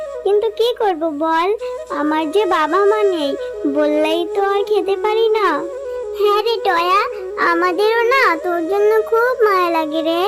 কিন্তু কি করব বল, আমার যে বাবা মা নেই, বললেই তো আর খেতে পারি না। হ্যাঁ রে টয়া, আমাদেরও না তোর জন্য খুব মায়া লাগে রে,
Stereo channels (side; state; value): both; identical; correlation 1.00